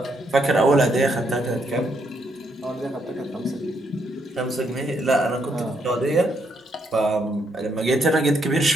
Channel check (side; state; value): both; normal; correlation 0.75